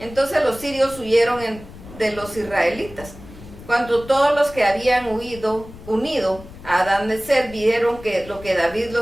los sirios huyeron de los israelitas. Cuando todos los que habían unido a Adad-Nezer vieron que lo que David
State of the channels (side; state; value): left; noise; rumble, 17 dB below the sound